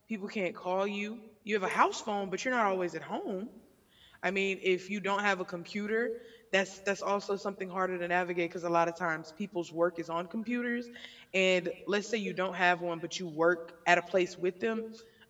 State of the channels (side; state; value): both; identical; correlation 1.00